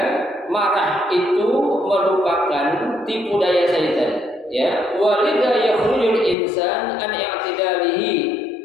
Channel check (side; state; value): right; drops out; at 6.4 s